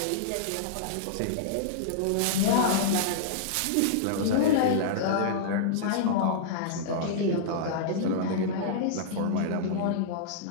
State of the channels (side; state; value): both; different; correlation -0.02